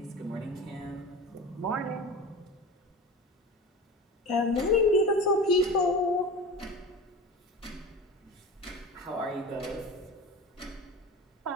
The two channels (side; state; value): both; normal; correlation 0.32